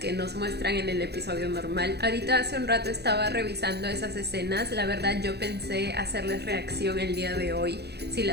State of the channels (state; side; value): late; left; 0.48 ms